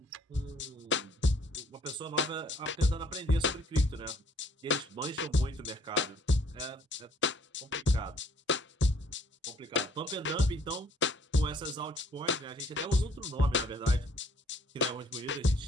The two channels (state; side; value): normal; both; correlation 0.62